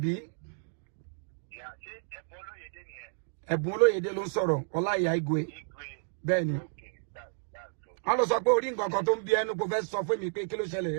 Yeah, ṣé Ẹ̀bùn Olóyèdé nìyẹn? Ẹ̀bùn Olóyèdé ló ń sọ̀rọ̀, Olaiya Igwe. Bẹ́ẹ̀ ni. Wọ́n lọ sọ pé orí nǹkan kan tó ń bí ẹnu kò fẹ́ sọ fún mi pé kí ló ṣẹlẹ̀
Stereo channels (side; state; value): left; silent; digital silence